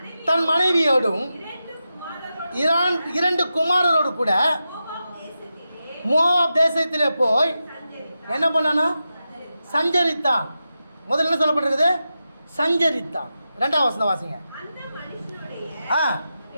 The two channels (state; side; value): inverted; both; correlation -0.90